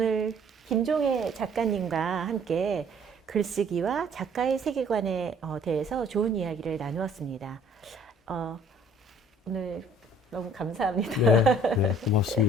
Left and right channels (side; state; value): both; normal; correlation 0.56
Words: 김종혜 작가님과 함께 글쓰기와 작가의 세계관에 대해서 좋은 이야기를 나누었습니다. 오늘 너무 감사합니다. 네,